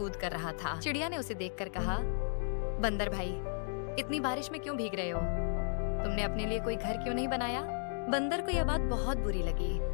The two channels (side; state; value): right; silent; digital silence